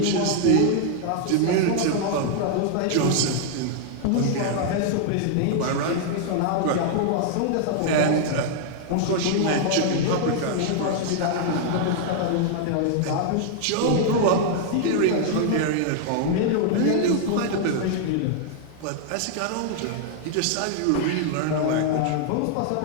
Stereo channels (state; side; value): different; both; correlation -0.01